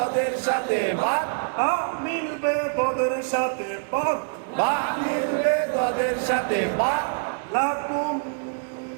সাথে বা বা মিলবে তোদের সাথে বা বা মিলবে তোদের সাথে বা লাকুম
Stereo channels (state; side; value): silent; left; digital silence